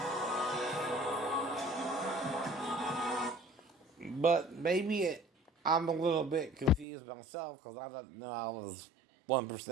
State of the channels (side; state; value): left; drops out; at 6.9 s